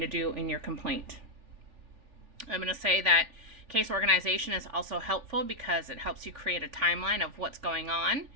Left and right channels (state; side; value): late; left; 3.4 ms